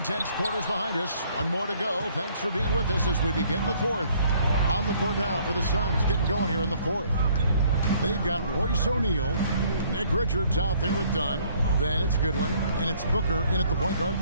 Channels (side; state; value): both; inverted; correlation -0.61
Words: quarters behind us. One more to go. Thanks for being with us as we begin the 4th. On the court now for the Suns, getting going here in the 4th. They've got Royce O'Neal, Nick Richards out there with Dunn. Then it's Goodwin, and it's Booker in at the point guard